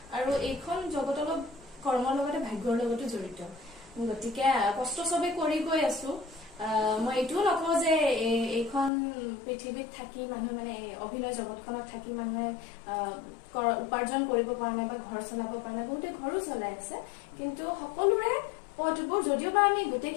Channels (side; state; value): right; drops out; at 8.9 s